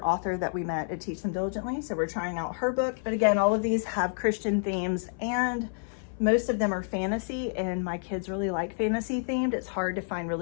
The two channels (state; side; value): silent; right; 57 dB below the other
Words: author that we met at Teach Them Diligently. So we're trying out her book. But again, all of these have Christian themes, and most of them are fantasy, and my kids really like fantasy themed. It's hard to find